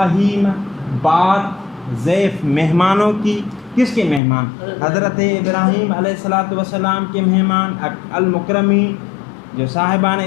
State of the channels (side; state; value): right; drops out; at 4.2 s